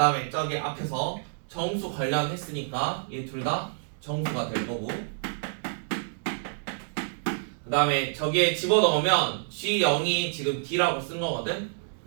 저기 앞에서 정수 관련했으니까 얘 둘 다 정수가 될 거고, 그 다음에 저기에 집어넣으면 G0이 지금 D라고 쓴 거거든.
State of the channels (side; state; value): left; silent; digital silence